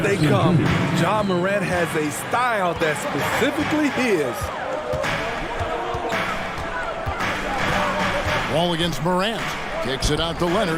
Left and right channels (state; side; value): identical; both; correlation 1.00